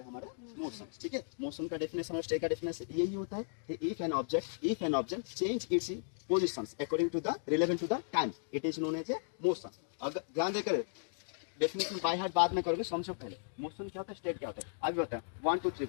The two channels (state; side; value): silent; right; digital silence